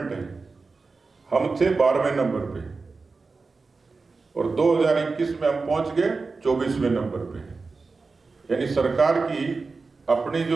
है, हम थे 12वें नंबर पे और 2021 में हम पहुंच गए 24वें नंबर पे। यानी सरकार की अपनी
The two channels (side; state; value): left; quieter; 4.2 dB